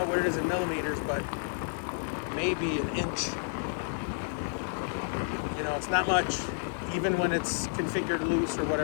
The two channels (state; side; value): silent; right; 57 dB below the other